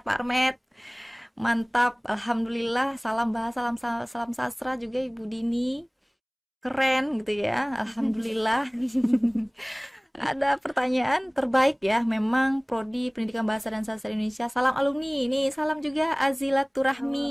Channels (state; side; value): identical; both; correlation 1.00